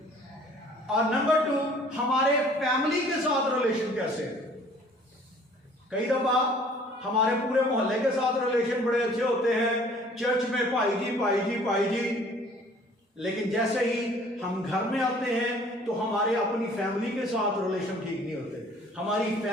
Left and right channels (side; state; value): both; normal; correlation 0.54